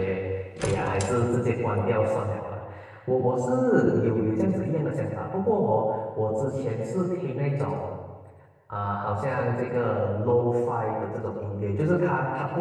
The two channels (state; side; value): identical; both; correlation 1.00